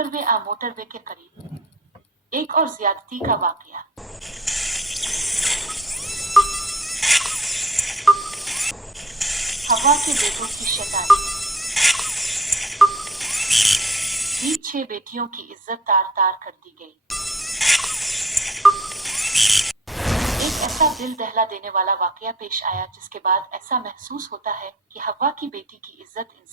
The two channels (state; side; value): normal; both; correlation 0.55